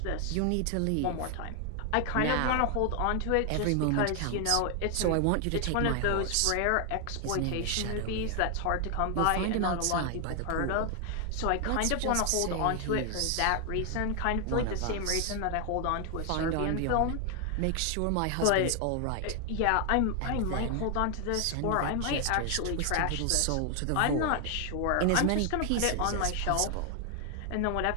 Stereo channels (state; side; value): different; both; correlation 0.00